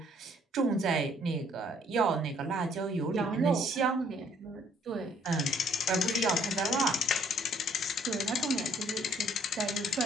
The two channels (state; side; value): normal; both; correlation 0.62